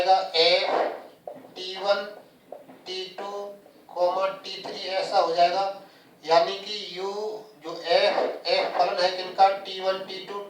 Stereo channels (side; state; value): both; identical; correlation 1.00